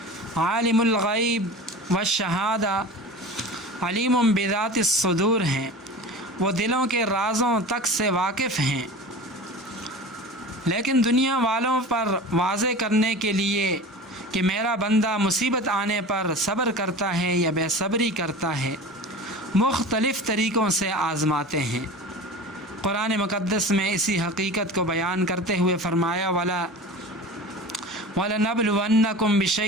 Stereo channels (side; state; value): both; normal; correlation 0.35